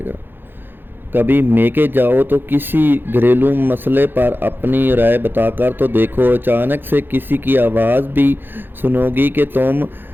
گا۔ کبھی میکے جاؤ تو کسی گھریلو مسئلے پر اپنی رائے بتا کر تو دیکھو، اچانک سے کسی کی آواز بھی سنو گی کہ تم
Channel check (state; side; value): late; left; 0.099 ms